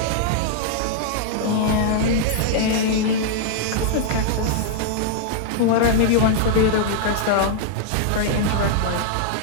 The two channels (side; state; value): both; different; correlation -0.01